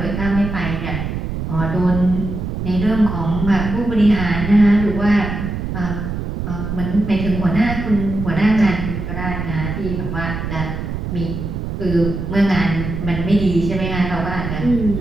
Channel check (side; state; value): right; noise; rumble, 4 dB below the sound